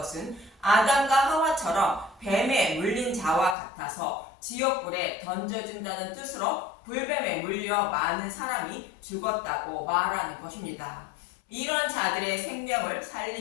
아담과 하와처럼 뱀에 물린 자와 같아서 지옥불에 던져진다는 뜻으로 불뱀에 물려 많은 사람이 죽었다고 말하는 것입니다. 이런 자들의 생명을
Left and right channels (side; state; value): right; drops out; at 3.6 s